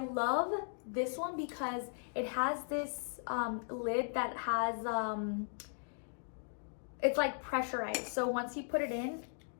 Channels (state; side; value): silent; right; digital silence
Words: this one because it has this lid that has, it's like pressurized. So once you put it in,